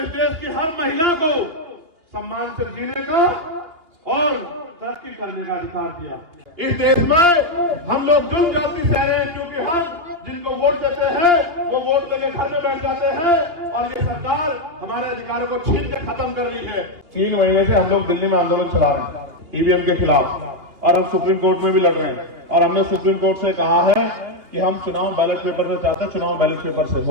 इस देश की हर महिला को सम्मान से जीने का और तरक्की करने का अधिकार दिया। इस देश में हम लोग जुल्म जाति सह रहे हैं क्योंकि हम जिनको वोट देते हैं वो वोट देके घर में बैठ जाते हैं और ये सरकार हमारे अधिकारों को छीन के खत्म कर रही है। 3 महीने से हम लोग दिल्ली में आंदोलन चला रहे हैं ईवीएम के खिलाफ और हम सुप्रीम कोर्ट में भी लड़ रहे हैं और हमने सुप्रीम कोर्ट से कहा है कि हम चुनाव बैलेट पेपर से चाहते हैं, चुनाव बैलेट पेपर से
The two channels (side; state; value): left; late; 2.8 ms